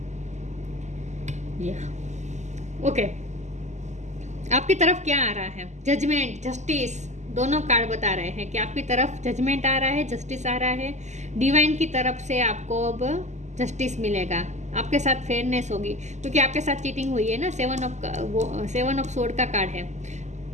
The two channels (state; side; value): late; left; 0.34 ms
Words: ओके, आपकी तरफ क्या आ रहा है। जजमेंट, जस्टिस, दोनों कार्ड बता रहे हैं कि आपकी तरफ जजमेंट आ रहा है, जस्टिस आ रहा है। डिवाइन की तरफ से आपको अब जस्टिस मिलेगा, आपके साथ फेयरनेस होगी, क्योंकि आपके साथ चीटिंग हुई है ना। सेवन ऑफ सोर्ड का कार्ड है।